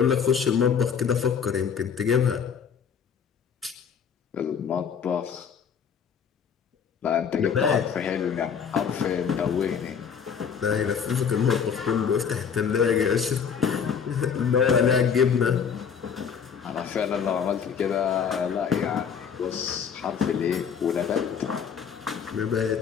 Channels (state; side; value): quieter; right; 7.0 dB